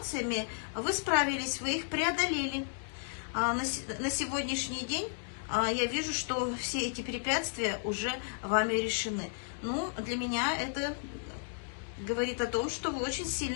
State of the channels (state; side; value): silent; right; digital silence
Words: вы справились, вы их преодолели. На сегодняшний день я вижу, что все эти препятствия уже вами решены. Ну, для меня это говорит о том, что вы очень